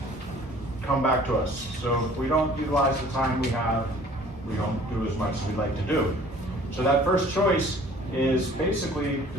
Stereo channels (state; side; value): normal; both; correlation 0.52